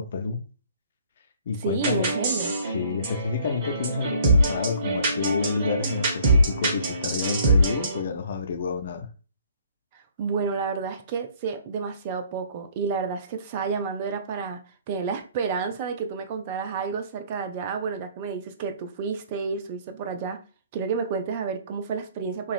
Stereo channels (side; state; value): both; inverted; correlation -0.58